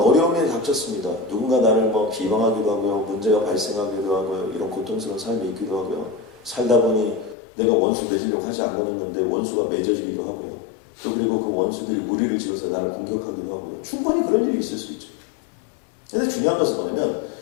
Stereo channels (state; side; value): drops out; right; at 7.4 s